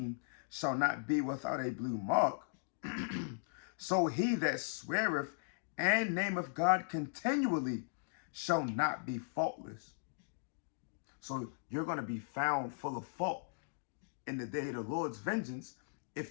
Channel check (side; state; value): right; silent; digital silence